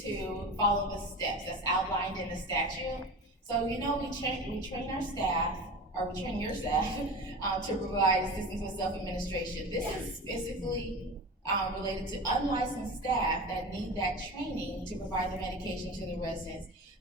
follow the steps that's outlined in the statute. So we train our staff or we train your staff to provide assistance with self-administration. This is specifically related to unlicensed staff that need that training to provide the medication to the residents.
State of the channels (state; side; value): normal; both; correlation 0.31